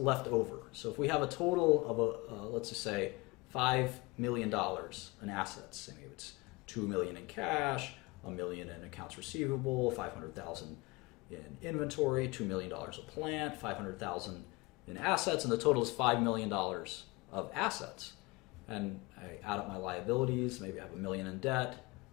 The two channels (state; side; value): quieter; right; 24.5 dB